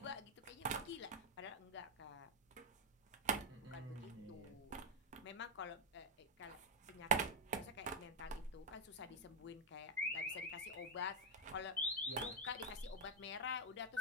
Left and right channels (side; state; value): both; normal; correlation -0.02